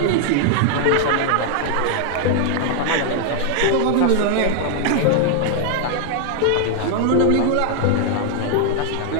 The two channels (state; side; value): different; both; correlation 0.00